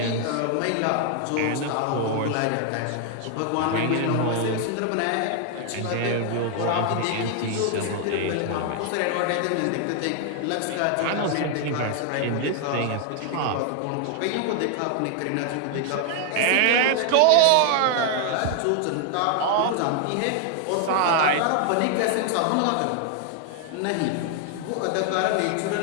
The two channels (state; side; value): different; both; correlation 0.00